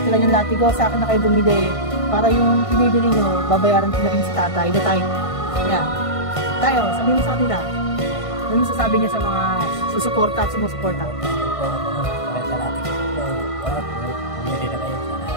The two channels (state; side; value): late; right; 1.5 ms